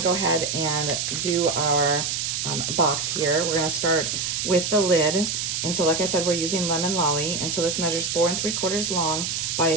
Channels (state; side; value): noise; right; hiss, 1 dB below the sound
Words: go ahead and do our box here. We're going to start with the lid. And so like I said, we're using Lemon Lolly. And so this measures 4 3/4 long